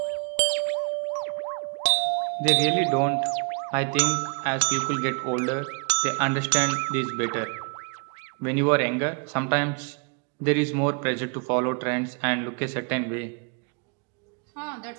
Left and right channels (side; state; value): left; quieter; 38.0 dB